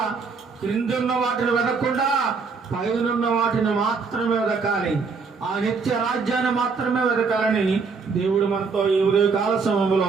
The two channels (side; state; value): left; quieter; 4.9 dB